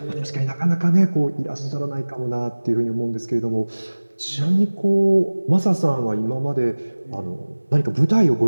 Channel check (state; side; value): inverted; both; correlation -1.00